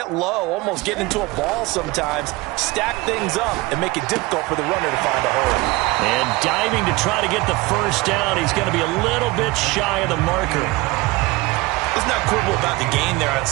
low, almost get into a ball sometimes, stack things up, and make it difficult for the runner to find a hole. And diving to try to get the first down, he's going to be a little bit shy of the marker. Let's not quibble about the gain there on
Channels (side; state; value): left; quieter; 22.2 dB